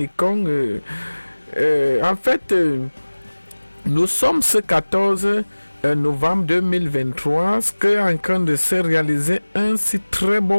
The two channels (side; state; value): both; inverted; correlation -1.00